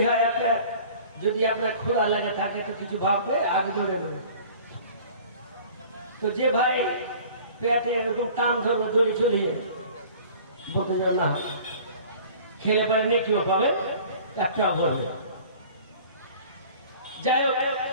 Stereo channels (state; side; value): inverted; both; correlation -0.47